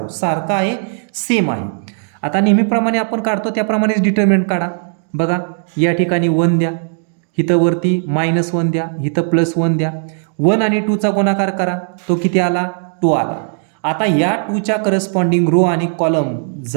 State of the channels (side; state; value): left; silent; digital silence